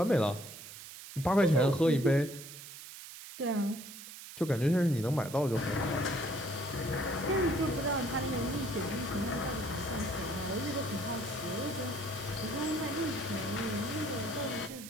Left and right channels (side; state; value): right; noise; hiss, 13 dB below the sound